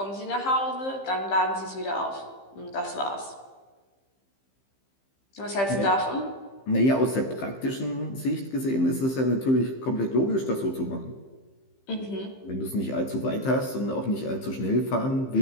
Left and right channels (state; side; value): late; right; 15 ms